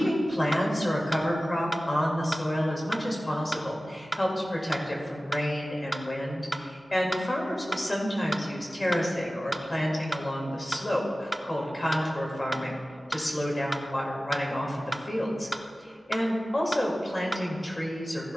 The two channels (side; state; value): both; normal; correlation 0.96